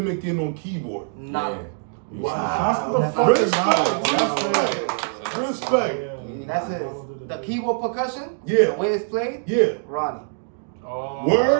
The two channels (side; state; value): left; silent; digital silence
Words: on keyboard. Nah. Wow. Respect. That's it. The keyboard percussion. Yeah. The way it's played. Yeah. Ronnie. Oh,